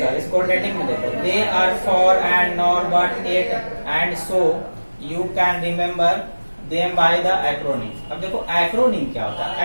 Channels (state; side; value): inverted; both; correlation -1.00